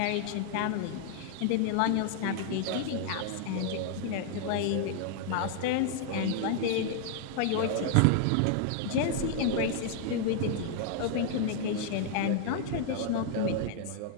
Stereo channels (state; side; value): different; both; correlation -0.01